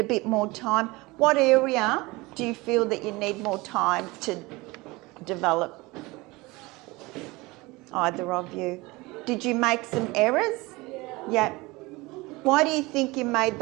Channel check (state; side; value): quieter; left; 22.6 dB